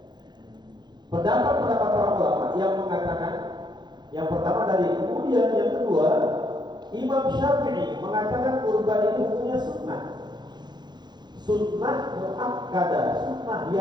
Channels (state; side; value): late; left; 0.21 ms